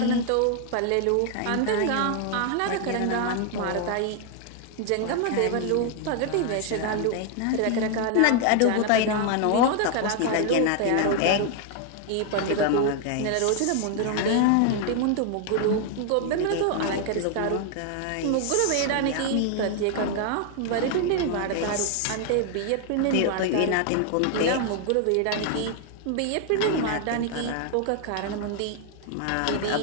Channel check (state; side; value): different; both; correlation 0.00